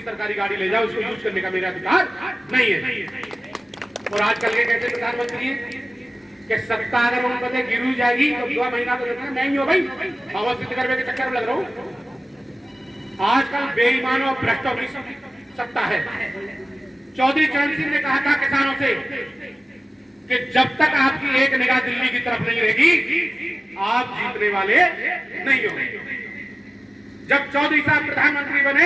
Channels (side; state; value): both; normal; correlation 0.97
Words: सरकारी गाड़ी ले जाओ, इसको यूज करने का मेरा अधिकार नहीं है। और आजकल के कैसे प्रधानमंत्री कि सत्ता अगर उन पते गिर जाएगी तो 2 महीना तो देखना मैं ही हूं भाई, पावर सिद्ध करने के चक्कर में लग रहा हूं। आजकल बेईमानों और भ्रष्टों की सत्ता है। चौधरी चरण सिंह ने कहा था किसानों से कि जब तक आपकी एक निगाह दिल्ली की तरफ नहीं रहेगी आप जीतने वाले नहीं होंगे। जब चौधरी साहब प्रधानमंत्री बने